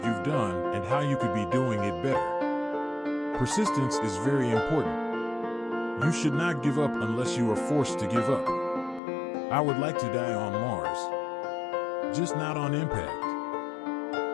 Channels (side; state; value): right; drops out; at 9.0 s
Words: you've done and how you could be doing it better. Persistence is very important. You should not give up unless you are forced to give up. I would like to die on Mars, just not on